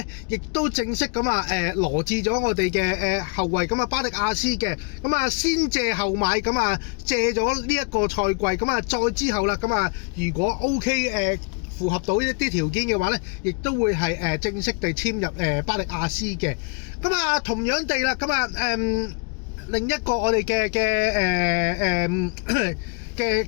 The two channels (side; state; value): right; quieter; 36.8 dB